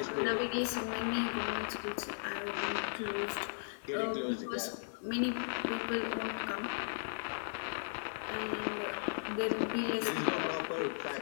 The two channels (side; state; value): right; silent; digital silence